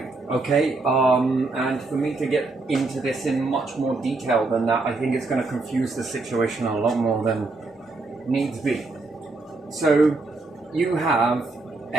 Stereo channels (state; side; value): quieter; left; 3.5 dB